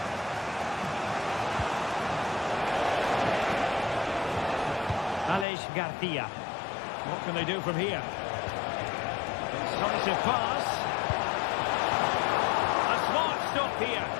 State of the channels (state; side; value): drops out; right; at 5.5 s